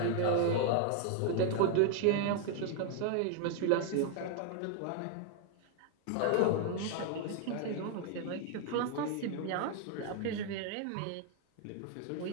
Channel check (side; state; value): both; different; correlation 0.01